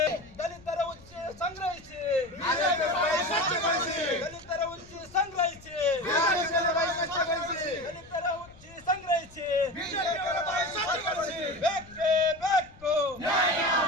ದಲಿತರ ಉಚ್ಚಿ ಸಂಗ್ರಹಿಸಿ, ಬಿಜೆಪಿಯವರ ಬಾಯಿ ಸ್ವಚ್ಛಗೊಳಿಸಿ, ದಲಿತರ ಉಚ್ಚಿ ಸಂಗ್ರಹಿಸಿ, ಬಿಜೆಪಿಯವರ ಬಾಯಿ ಸ್ವಚ್ಛಗೊಳಿಸಿ, ದಲಿತರ ಉಚ್ಚಿ ಸಂಗ್ರಹಿಸಿ, ಬಿಜೆಪಿಯವರ ಬಾಯಿ ಸ್ವಚ್ಛಗೊಳಿಸಿ. ಬೇಕೇ ಬೇಕು, ನ್ಯಾಯ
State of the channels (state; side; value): noise; left; rumble, 23 dB below the sound